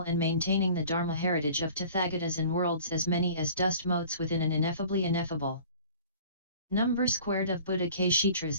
and maintaining the Dharma heritage of Tathagatas in worlds as many as dust motes within an ineffably ineffable number squared of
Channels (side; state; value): both; inverted; correlation -0.47